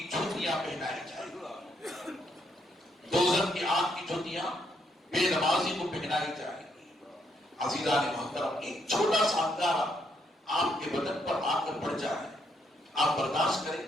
جوتیاں پہنائی جائیں گی، دوزخ کی آگ کی جوتیاں بے نمازی کو پہنائی جائیں گی۔ عزیزان محترم، ایک چھوٹا سا انگارہ آپ کے بدن پر آ کر پڑ جائے، آپ برداشت کریں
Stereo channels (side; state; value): both; normal; correlation 0.75